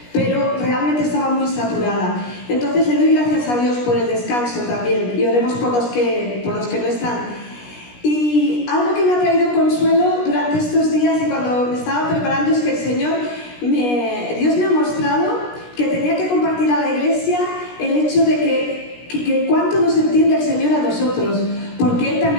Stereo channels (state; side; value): late; right; 17 ms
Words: pero realmente estaba muy saturada. Entonces le doy gracias a Dios por el descanso también y oremos por los que no están. Y algo que me ha traído consuelo durante estos días y cuando me estaba preparando es que el Señor, Dios me ha mostrado que tenía que compartir a la iglesia el hecho de que cuánto nos entiende el Señor a nosotros, porque Él